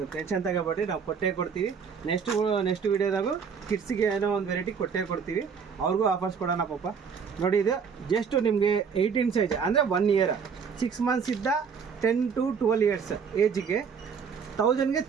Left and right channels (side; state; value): left; quieter; 6.3 dB